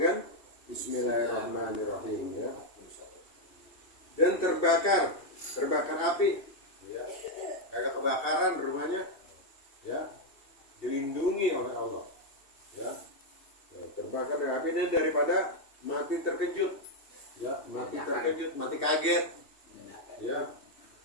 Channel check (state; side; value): late; right; 2.7 ms